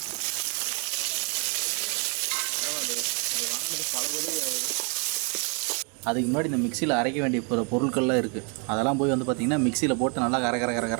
அதுக்கு முன்னாடி இந்த மிக்சியில் அரைக்க வேண்டிய பொருட்கள்லாம் இருக்குது. அதெல்லாம் போய் வந்து பார்த்திங்கன்னா மிக்சியில் போட்டு நல்லா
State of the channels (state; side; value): quieter; left; 36.0 dB